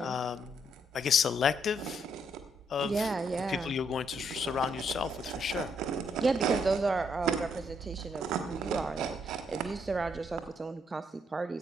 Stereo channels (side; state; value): both; normal; correlation 0.73